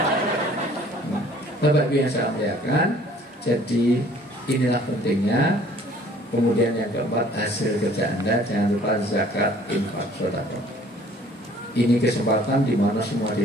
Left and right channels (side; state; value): both; normal; correlation 0.55